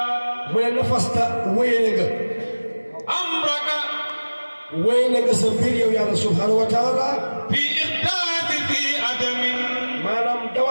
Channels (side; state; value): both; inverted; correlation -1.00